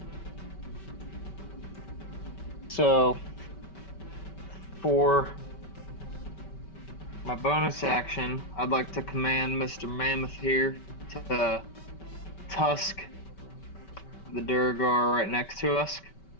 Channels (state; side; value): late; right; 5.2 ms